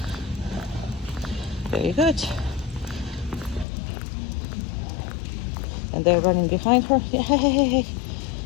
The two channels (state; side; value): drops out; right; at 3.7 s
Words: Very good. And they're running behind her. Yay!